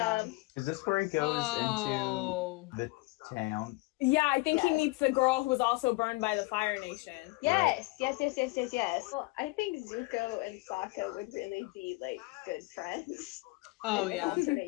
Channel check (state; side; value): quieter; right; 23.7 dB